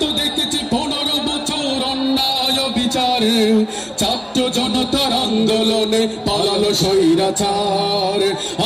তো দেখেছি 15 বছর অন্যায় বিচারে, ছাত্র জনতার আন্দোলনে পালালো স্বৈরাচার।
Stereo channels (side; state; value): both; identical; correlation 1.00